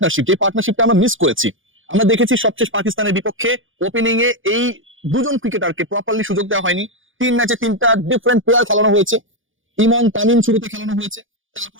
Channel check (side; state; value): left; late; 0.58 ms